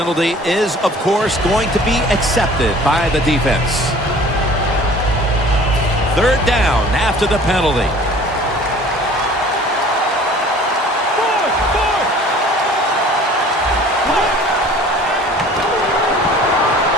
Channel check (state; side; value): normal; both; correlation 0.48